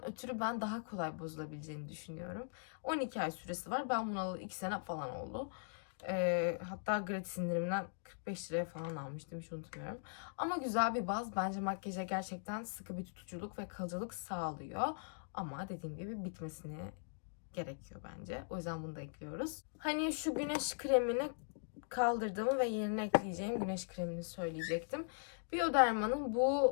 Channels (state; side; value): silent; right; digital silence